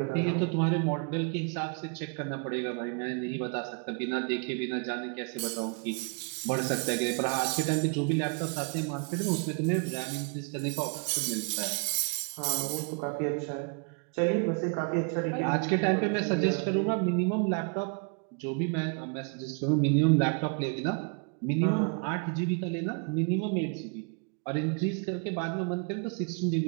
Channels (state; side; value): quieter; left; 37.7 dB